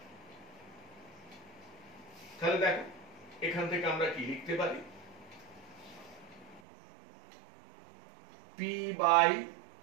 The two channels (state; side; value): drops out; left; at 6.6 s